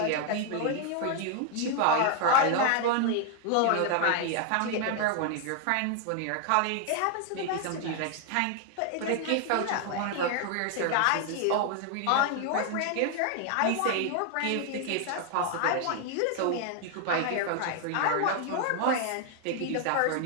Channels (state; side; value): different; both; correlation 0.00